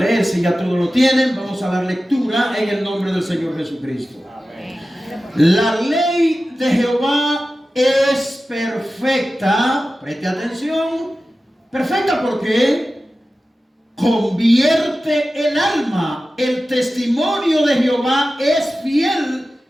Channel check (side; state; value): both; normal; correlation 0.94